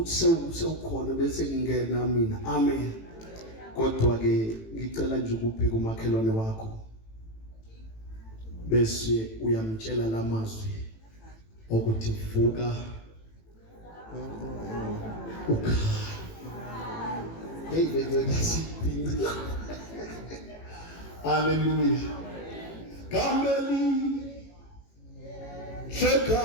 sewukhona bese ngingena mina. Amen. Kodwa ke ngicela nje ukubheka umakhelwane wakho bese uyamtshela lamazwi ukuthi vuka ukhaya. Hey lesiphinda. Hallelujah. Kameli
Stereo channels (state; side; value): late; right; 18 ms